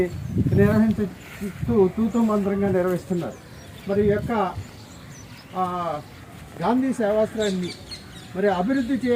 తూతూ మంత్రంగా నిర్వహిస్తున్నారు. మరి ఈ యొక్క గాంధీ సేవాశ్రయాన్ని మరి అభివృద్ధి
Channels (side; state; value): both; identical; correlation 1.00